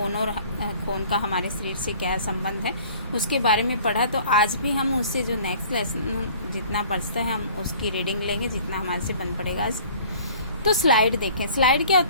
और खून का हमारे शरीर से क्या संबंध है उसके बारे में पढ़ा। तो आज भी हम उससे जो नेक्स्ट लेसन जितना बचता है हम उसकी रीडिंग लेंगे, जितना हमारे से बन पड़ेगा आज। तो स्लाइड देखें। स्लाइड क्या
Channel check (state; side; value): inverted; both; correlation -0.50